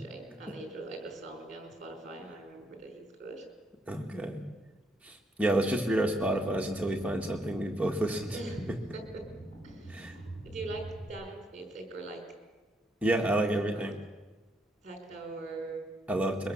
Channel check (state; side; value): normal; both; correlation 0.74